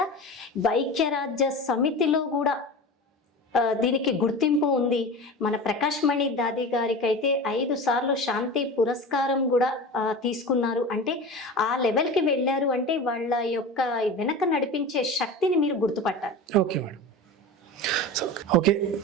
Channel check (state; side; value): normal; both; correlation 0.31